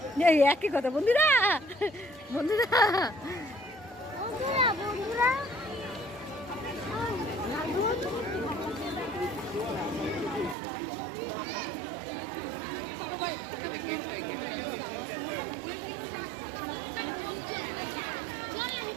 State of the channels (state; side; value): drops out; left; at 10.6 s